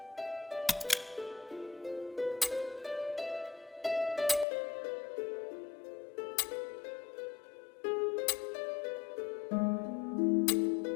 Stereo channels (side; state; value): right; drops out; at 4.5 s